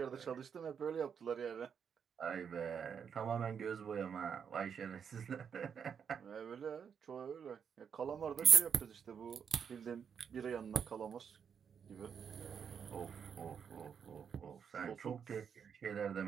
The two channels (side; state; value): left; quieter; 7.2 dB